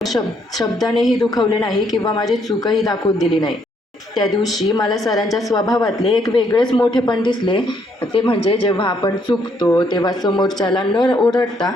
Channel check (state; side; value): normal; both; correlation 0.71